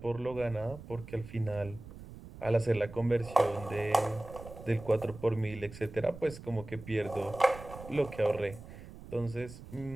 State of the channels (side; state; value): right; noise; rumble, 15 dB below the sound